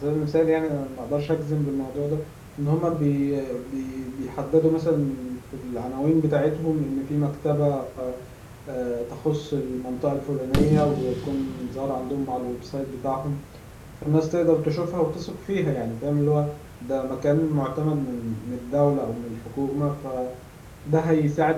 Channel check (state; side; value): identical; both; correlation 1.00